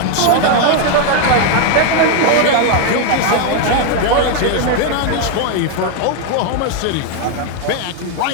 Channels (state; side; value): different; both; correlation 0.01